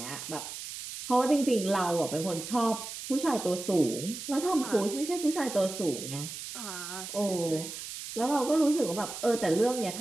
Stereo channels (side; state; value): right; noise; hiss, 9 dB below the sound